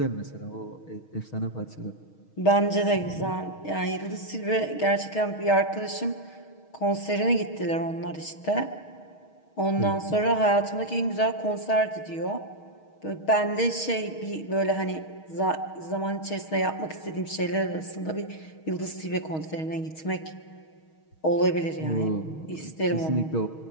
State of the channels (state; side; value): late; right; 6.4 ms